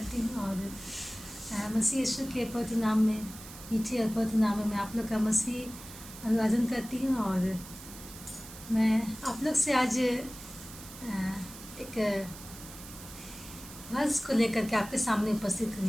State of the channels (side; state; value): right; noise; hiss, 15 dB below the sound